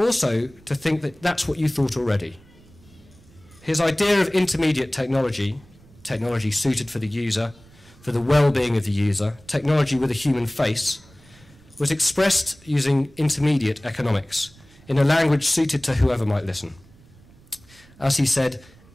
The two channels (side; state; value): right; noise; rumble, 26 dB below the sound